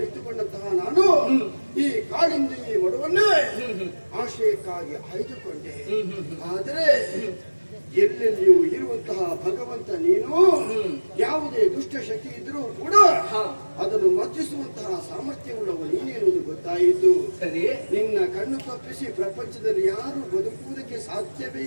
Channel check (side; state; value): both; inverted; correlation -1.00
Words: ನಾನು ಈ ಕಾಳಿಂದಿ ಮಡುವನ್ನೇ ಆಶಯಕ್ಕಾಗಿ ಆಯ್ದುಕೊಂಡೆ. ಆದರೆ ಎಲ್ಲೆಲ್ಲಿಯೂ ಇರುವಂತಹ ಭಗವಂತ ನೀನು ಯಾವುದೇ ದುಷ್ಟ ಶಕ್ತಿ ಇದ್ರೂ ಕೂಡ ಅದನ್ನು ಮರ್ಜಿಸುವಂತಹ ಸಾಮರ್ಥ್ಯವುಳ್ಳವ ನೀನೇನುವುದು ಗೊತ್ತಾಯಿತು. ಸರಿ. ನಿನ್ನ ಕಣ್ಣು ತಪ್ಪಿಸಿ ಪ್ರಪಂಚದಲ್ಲಿ ಯಾರು ಬದುಕುವುದಕ್ಕೆ ಸಾಧ್ಯವೇ